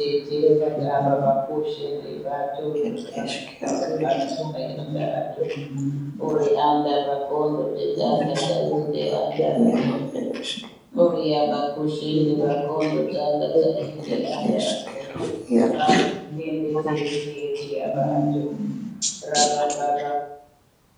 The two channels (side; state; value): both; identical; correlation 1.00